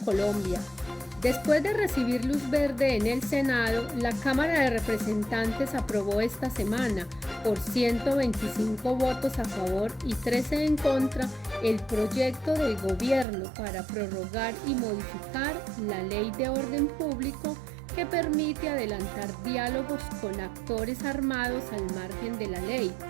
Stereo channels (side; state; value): left; drops out; at 13.2 s